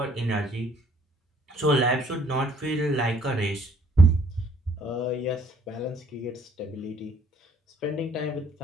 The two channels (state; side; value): normal; both; correlation 0.61